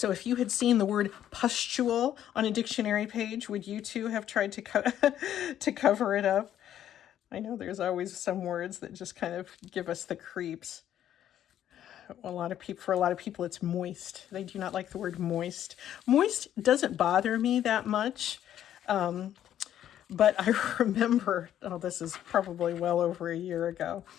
if you had seen the word pustule on a dictionary page, would you too have tried to to cover it up? I know there's always some words that just kind of give us the creeps. For a lot of people, it's moist. They do not like the word moist. Moist doesn't bother me that much. But I remember, this is probably well over a year ago,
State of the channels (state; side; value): quieter; right; 11.0 dB